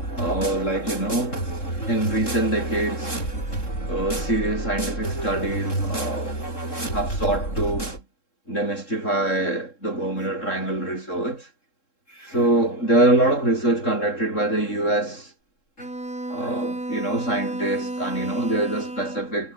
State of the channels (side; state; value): right; late; 3.7 ms